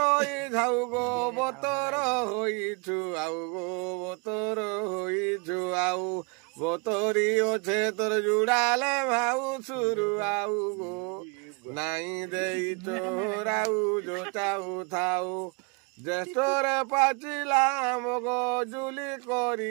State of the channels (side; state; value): left; quieter; 31.9 dB